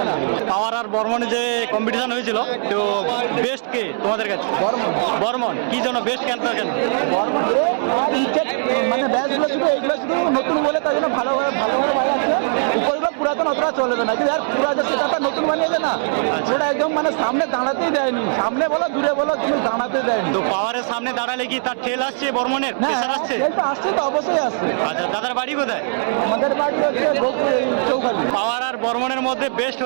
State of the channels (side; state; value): left; silent; 60 dB below the other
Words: পাওয়ার আর বর্মনে যে কম্পিটিশন হয়েছিল, তো বেস্ট কে তোমাদের কাছে? বর্মন। কি জন্য বেস্ট কেন? মানে ব্যাচগুলো শুধু এইগুলো শুধু নতুন বলে তাই জন্য ভালো ভালো বাজাচ্ছে। উপরগুলো পুরাতন অতটা চলবে না, কিন্তু আর পুরা যে সেটা নতুন বানিয়েছে না, ওটা একদম মানে সামনে দাঁড়াতেই দেয়নি। সামনে বলো দূরে বলো, কিন্তু দাঁড়াতে দেয়নি। তো পাওয়ারের সামনে দাঁড়ালে কি তার ঠেল আসছে বর্মনের? প্রেসার আসছে? আসছে তো, অবশ্যই আসছে। আচ্ছা, দাদার বাড়ি কোথায়? আমাদের বাড়ি হচ্ছে চৌখালি। পাওয়ার আর বর্মনের মধ্যে বেস্ট